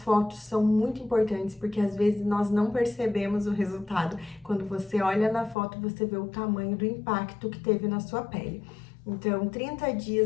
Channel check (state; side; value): drops out; right; at 5.6 s